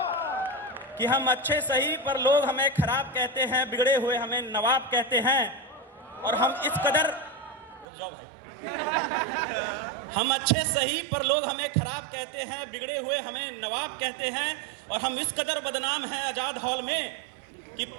कि हम अच्छे सही पर लोग हमें खराब कहते हैं, बिगड़े हुए हमें नवाब कहते हैं। और हम इस कदर, जाओ भाई, हम अच्छे सही पर लोग हमें खराब कहते हैं, बिगड़े हुए हमें नवाब कहते हैं। और हम इस कदर बदनाम हैं आजाद हॉल में कि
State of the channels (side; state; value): left; drops out; at 7.9 s